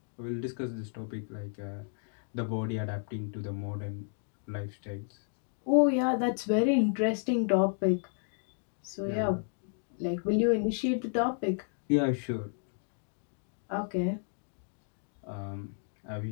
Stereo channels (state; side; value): silent; right; 56 dB below the other